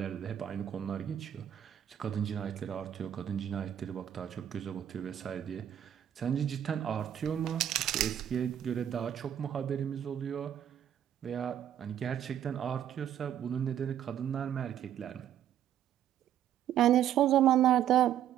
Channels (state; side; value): quieter; left; 10.4 dB